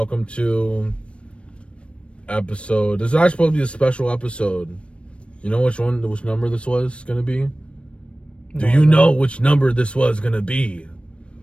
to episode. This is actually supposed to be a special episode. You know which number this was gonna be? Do you know which number this was gonna be?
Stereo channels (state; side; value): late; right; 0.060 ms